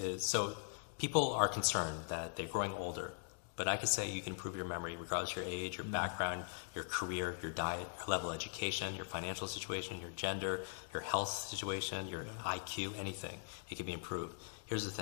so people are concerned that they're growing older. But I could say you can improve your memory regardless of your age, your background, your career, your diet, your level of education, your financial situation, your gender, your health situation, your IQ, anything. It can be improved. Here's the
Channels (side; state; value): right; silent; digital silence